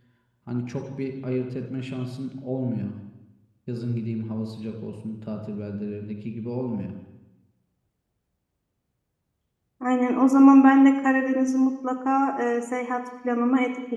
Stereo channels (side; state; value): both; identical; correlation 1.00